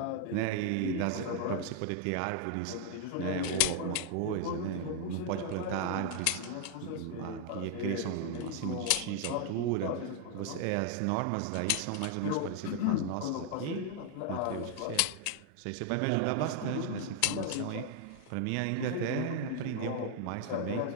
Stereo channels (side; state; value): both; different; correlation 0.00